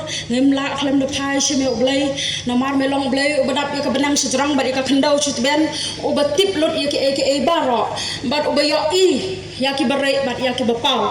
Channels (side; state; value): both; identical; correlation 1.00